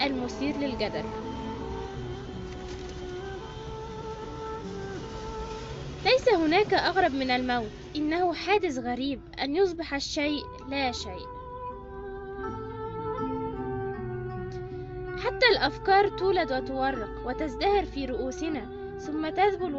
المثير للجدل. ليس هناك أغرب من الموت، إنه حادث غريب أن يصبح الشيء لا شيء. حتى الأفكار تولد وتورق وتزدهر في رؤوسنا ثم تذبل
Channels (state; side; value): identical; both; correlation 1.00